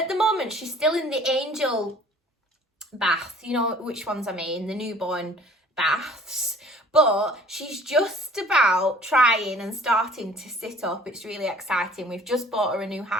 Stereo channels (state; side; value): normal; both; correlation 0.52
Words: the moment she's still in the angel bath, you know which ones I mean, the newborn baths, but she's just about trying and starting to sit up. It's really exciting. We've just bought her a new